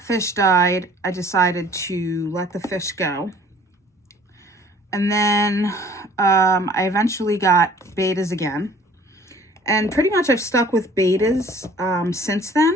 fish died, I decided to let the fish go. And then I eventually got betas again. And pretty much I've stuck with betas since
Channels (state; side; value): normal; both; correlation 0.52